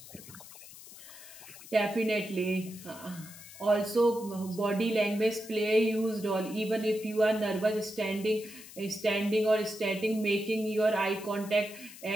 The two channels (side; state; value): left; noise; hiss, 17 dB below the sound